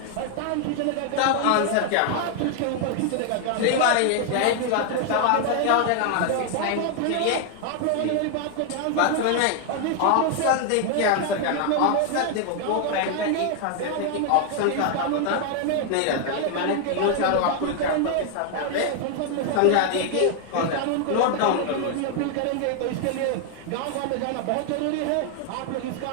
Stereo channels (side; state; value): both; different; correlation 0.00